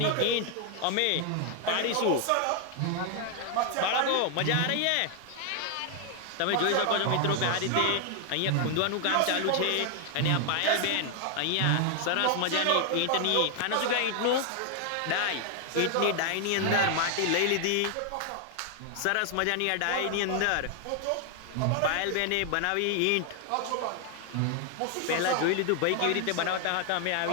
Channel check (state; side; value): different; both; correlation 0.00